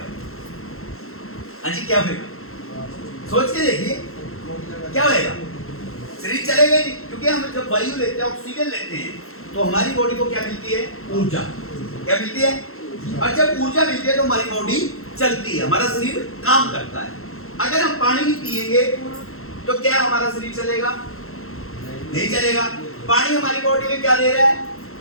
हाँ जी, क्या होगा? सोच के देखिए, क्या होगा? शरीर चलेगा नहीं, क्योंकि हम जब वायु लेते हैं, ऑक्सीजन लेते हैं, तो हमारी बॉडी को क्या मिलती है? ऊर्जा। क्या मिलती है? और जब ऊर्जा मिलती है तो हमारी बॉडी चलती है, हमारा शरीर काम करता है। अगर हम पानी नहीं पिएंगे तो क्या हमारा शरीर चलेगा? नहीं चलेगा। पानी हमारी बॉडी में क्या दे रहा है?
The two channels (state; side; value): late; right; 0.62 ms